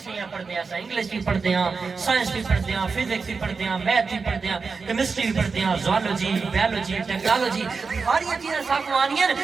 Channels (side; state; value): left; quieter; 4.8 dB